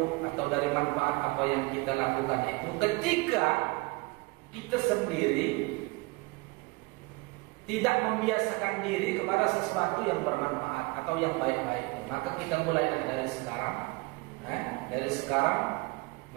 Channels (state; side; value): quieter; left; 25.1 dB